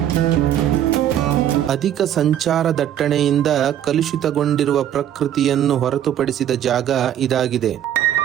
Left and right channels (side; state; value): left; quieter; 10.9 dB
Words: ಅಧಿಕ ಸಂಚಾರ ದಟ್ಟಣೆಯಿಂದ ಕಲುಷಿತಗೊಂಡಿರುವ ಪ್ರಕೃತಿಯನ್ನು ಹೊರತುಪಡಿಸಿದ ಜಾಗ ಇದಾಗಿದೆ.